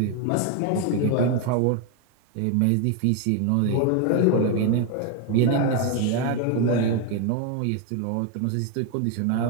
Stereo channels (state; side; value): different; both; correlation 0.01